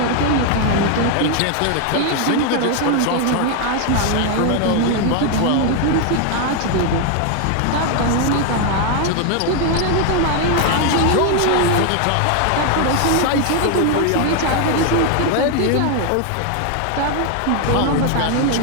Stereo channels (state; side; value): different; both; correlation 0.01